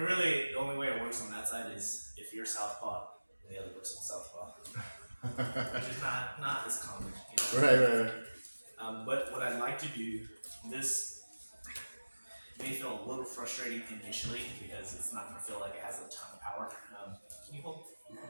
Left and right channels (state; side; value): inverted; both; correlation -1.00